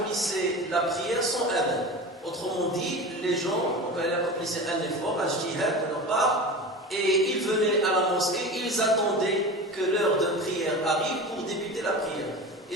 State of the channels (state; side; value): normal; both; correlation 0.31